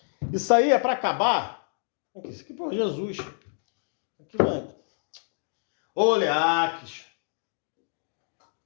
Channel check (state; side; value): silent; right; digital silence